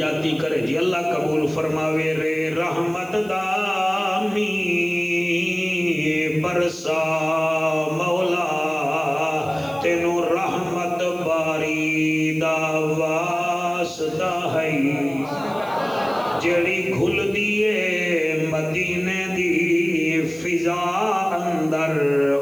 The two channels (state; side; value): noise; right; hiss, 23 dB below the sound